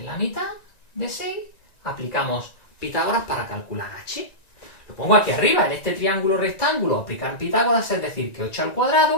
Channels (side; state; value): right; late; 1.9 ms